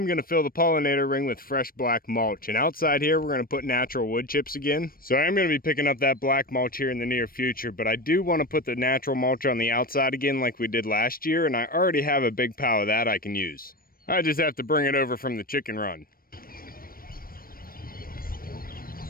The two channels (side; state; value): right; late; 0.42 ms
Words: going to fill the pollinator ring with fresh black mulch. And outside here, we're going to put natural wood chips again. So I am going to be picking up that black mulch here in the near future. But I do want to put the natural mulch on the outside again like we did last year. And I already have a big pile of that I can use. I just have to bring it over from the chicken run.